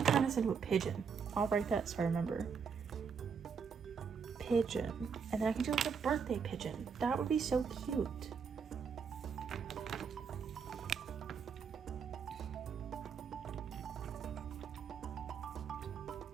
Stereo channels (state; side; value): quieter; left; 6.2 dB